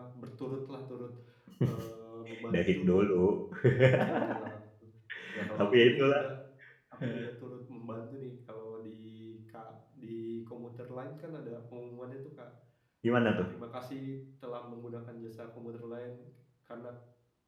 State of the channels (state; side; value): identical; both; correlation 1.00